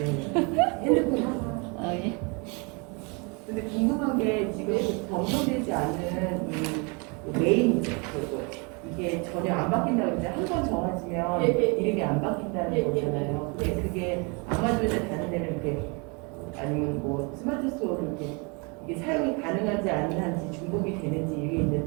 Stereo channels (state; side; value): quieter; left; 31.8 dB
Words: 핸드폰. 예. 근데 궁금한 게 지금 검토되지 않은 이 메인이죠. 이게 전혀 안 바뀐다고 했는데 한 번 정해지면 예, 예. 이름이 안 바뀐다는 예, 예, 거잖아요. 예. 근데 그게 아마존에 다른 데는 이렇게 아니면 뭐 스마트 스토어로 이렇게 이게 사용이 가능한지 아닌지 중복이 되는지 이게